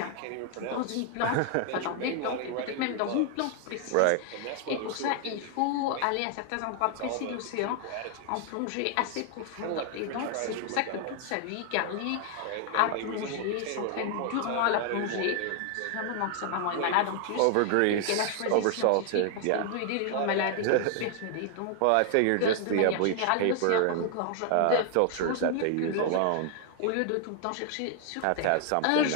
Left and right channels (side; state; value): both; different; correlation 0.00